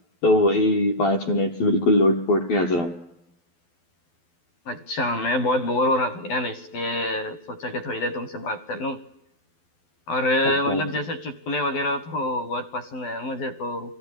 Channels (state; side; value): late; right; 12 ms